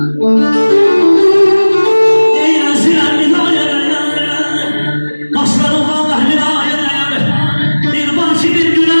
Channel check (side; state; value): both; inverted; correlation -1.00